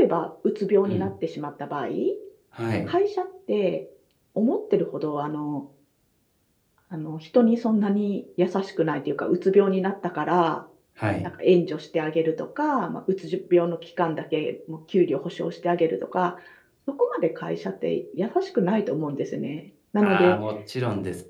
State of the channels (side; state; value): both; identical; correlation 1.00